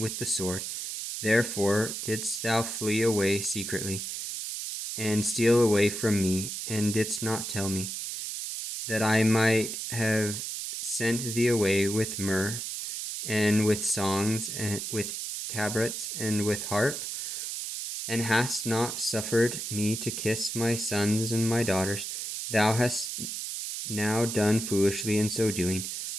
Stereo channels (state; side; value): noise; right; hiss, 5 dB below the sound